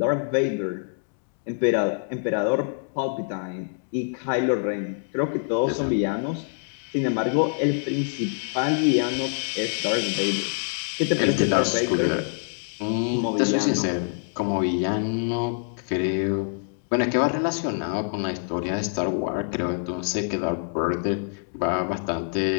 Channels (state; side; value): silent; right; digital silence